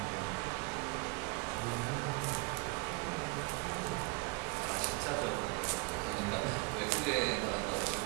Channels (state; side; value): quieter; left; 27.2 dB